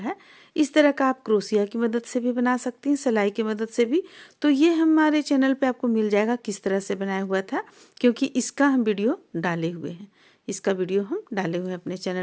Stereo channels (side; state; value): both; identical; correlation 1.00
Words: इस तरह का आप क्रोशिया की मदद से भी बना सकती हैं, सिलाई की मदद से भी। तो ये हमारे चैनल पे आपको मिल जाएगा किस तरह से बनाया हुआ था, क्योंकि इसका हम वीडियो डाले हुए हैं, इसका वीडियो हम डाले हुए हैं अपने